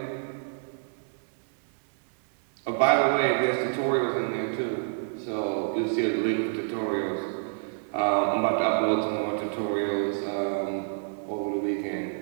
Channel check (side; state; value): left; silent; digital silence